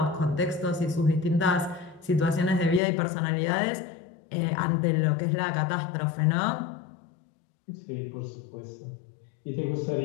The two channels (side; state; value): right; drops out; at 2.8 s